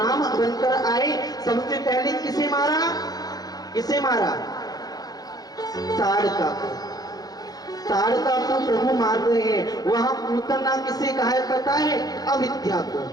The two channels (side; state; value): right; late; 0.19 ms